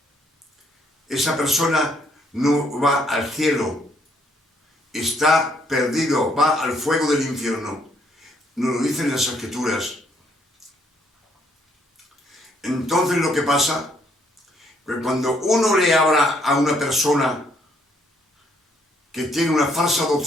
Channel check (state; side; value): normal; both; correlation 0.69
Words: esa persona no va al cielo, está perdido, va al fuego del infierno. Nos lo dicen las Escrituras. Entonces lo que pasa, que cuando uno le habla a una persona que tiene una falsa